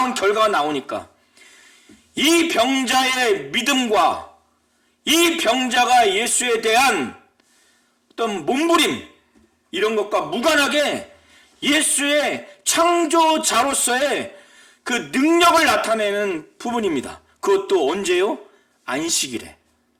결과가 나오니까 이 병자의 믿음과 이 병자가 예수에 대한 어떤 몸부림 이런 것과 무관하게 예수의 창조자로서의 그 능력을 나타내는 부분입니다. 그것도 언제요? 안식일에.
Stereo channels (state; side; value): identical; both; correlation 1.00